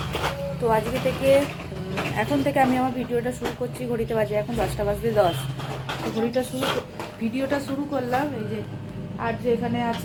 তো আজকে থেকে এখন থেকে আমি আমার ভিডিওটা শুরু করছি। ঘড়িতে বাজে এখন 10:10। তো ভিডিওটা শুরু করলাম। এই যে আর্য এখানে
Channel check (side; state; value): both; identical; correlation 1.00